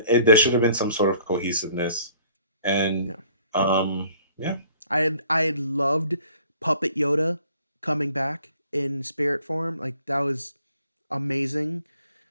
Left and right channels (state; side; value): inverted; both; correlation -0.57